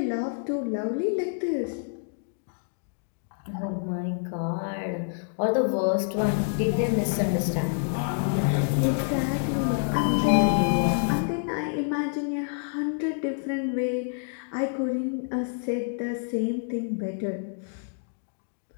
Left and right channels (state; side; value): silent; right; digital silence